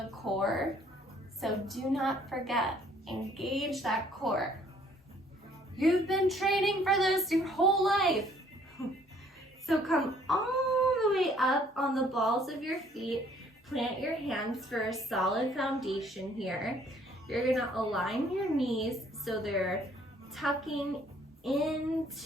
core. So do not forget, engage that core. You've been training for this your whole life. So come all the way up on the balls of your feet. Plant your hands for a solid foundation here. You're gonna align your knees so they're tucking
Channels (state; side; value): normal; both; correlation 0.60